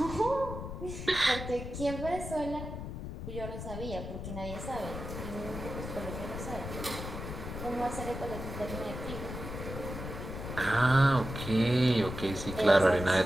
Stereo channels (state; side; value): noise; left; rumble, 7 dB below the sound